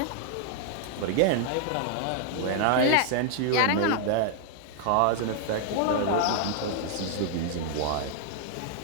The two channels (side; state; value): both; different; correlation 0.00